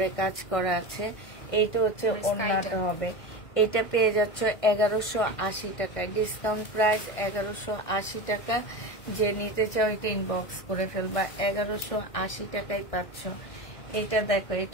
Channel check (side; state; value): right; late; 1.5 ms